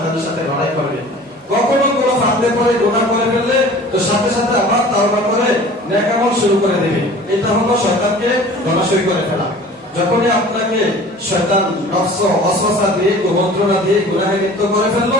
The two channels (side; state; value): both; normal; correlation 0.44